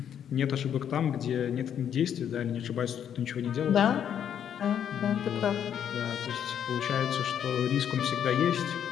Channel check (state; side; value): quieter; right; 9.1 dB